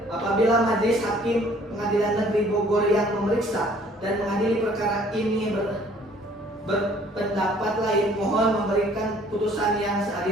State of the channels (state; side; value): normal; both; correlation 0.57